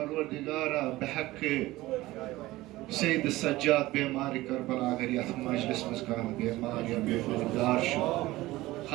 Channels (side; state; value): left; quieter; 18.1 dB